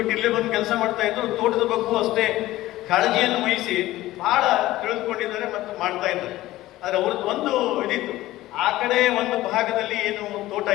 ಇಲ್ಲೇ ಬಂದು ಕೆಲಸ ಮಾಡ್ತಾ ಇದ್ರು. ತೋಟದ ಬಗ್ಗೂ ಅಷ್ಟೇ ಕಾಳಜಿಯನ್ನು ವಹಿಸಿ ಬಹಳ ತಿಳಿದುಕೊಂಡಿದ್ದಾರೆ ಮತ್ತು ಮಾಡ್ತಾ ಇದ್ದಾರೆ. ಆದರೆ ಅವ್ರದ್ದು ಒಂದು ಇದಿತ್ತು, ಆ ಕಡೆ ಒಂದು ಭಾಗದಲ್ಲಿ ಏನು ತೋಟ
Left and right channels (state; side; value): quieter; right; 16.4 dB